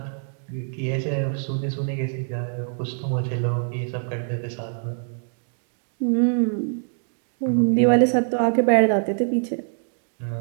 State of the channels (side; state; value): left; silent; digital silence